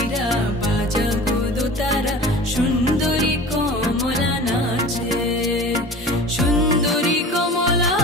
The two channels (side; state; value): both; normal; correlation 0.39